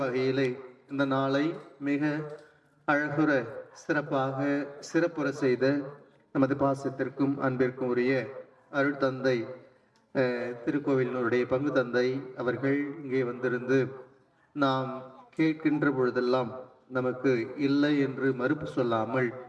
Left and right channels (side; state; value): both; identical; correlation 1.00